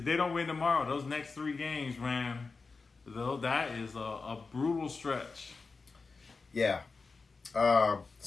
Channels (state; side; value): quieter; right; 4.3 dB